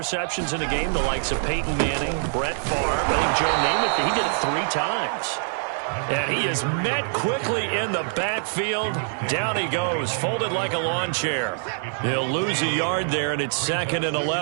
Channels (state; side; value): silent; left; 58 dB below the other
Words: in a game, the likes of Peyton Manning, Brett Favre, I think Joe Namath, he did it 3 times. And he is met quickly in the backfield. Down he goes, folded like a lawn chair. He'll lose a yard there, and it's 2nd and